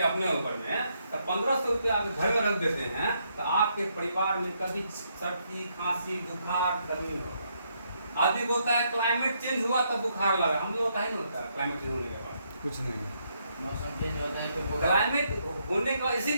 अपने ऊपर में, तो 1500 रुपया अगर घर में रख देते हैं तो आपके परिवार में कभी सर्दी खांसी बुखार गर्मी होगा। आदमी बोलता है क्लाइमेट चेंज हुआ तब बुखार लगा, हम लोग का ही नहीं होता है क्लाइमेट चेंज होने के बाद, कुछ नहीं। मौसम चेंज होता है तो क्लाइमेट होने का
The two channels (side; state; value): both; inverted; correlation -0.75